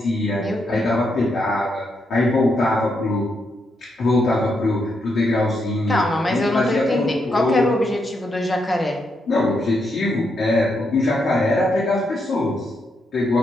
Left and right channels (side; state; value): both; normal; correlation 0.80